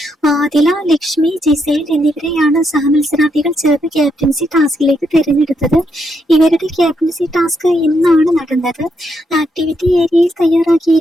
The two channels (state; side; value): normal; both; correlation 0.79